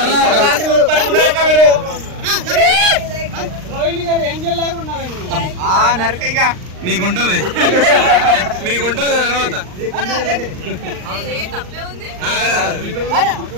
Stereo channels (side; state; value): left; late; 39 ms